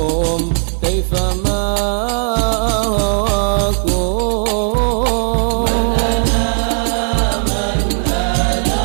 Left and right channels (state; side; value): silent; left; digital silence